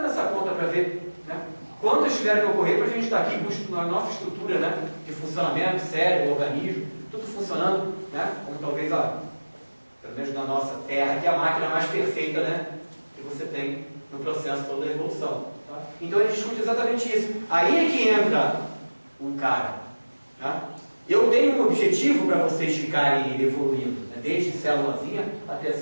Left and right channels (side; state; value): both; inverted; correlation -1.00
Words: essa conta para ver, né, quantas tiveram que ocorrer para a gente estar aqui com a nossa estrutura, né, de funcionamento, cérebro, organismo, tudo funcionando, né, como talvez pelo menos na nossa Terra, que é a máquina mais perfeita, né, que você tem no processo todo da evolução. Tá? Então a gente discute exatamente isso. Aí é que entra um cara. Tá? Eu tenho um objetivo para vocês ficarem evoluindo, né? Desde célulazinha até